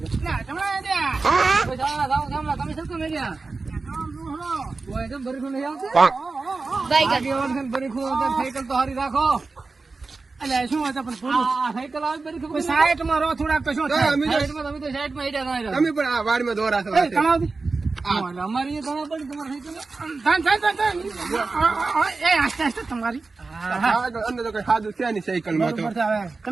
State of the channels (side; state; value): left; quieter; 3.9 dB